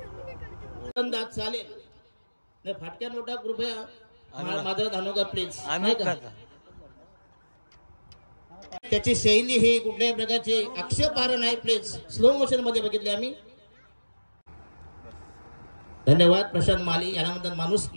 चालेल नाही. फाटक्या नोटा कृपया मात्र धानोगा प्लीज. त्याची शैली ही कुठल्याही प्रकारची आक्षेपार्ह नाही. प्लीज स्लो मोशन मध्ये बघितले आम्ही. धन्यवाद प्रशांत माली यांना म्हणतात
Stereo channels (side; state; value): both; inverted; correlation -1.00